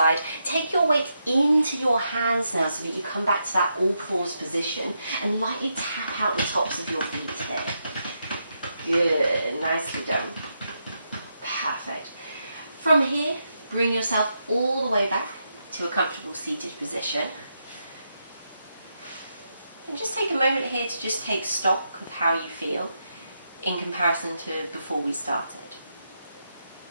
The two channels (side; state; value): both; inverted; correlation -0.83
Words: Take your weight into your hands now so that you come back to that all fours position and lightly tap out the tops of your feet here. Good, nicely done. Perfect. From here, bring yourself all the way back to a comfortable seated position. And just take a moment here to just take stock of how you feel in comparison to before we started.